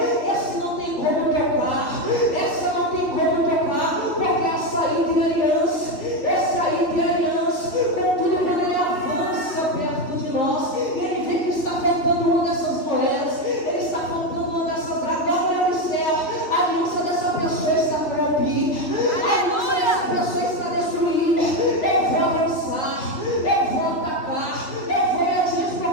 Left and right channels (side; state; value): right; late; 3.3 ms